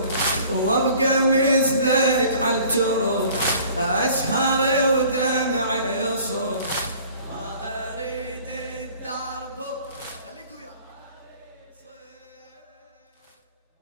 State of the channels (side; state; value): both; inverted; correlation -0.50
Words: وابقى مثلك عالترب اسهر ودمعي يصب